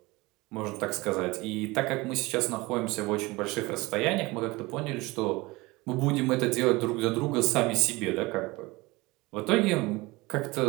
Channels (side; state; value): left; quieter; 22.4 dB